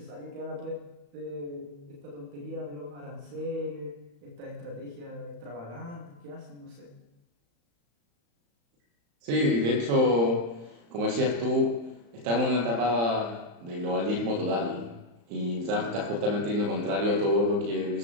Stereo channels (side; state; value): left; late; 35 ms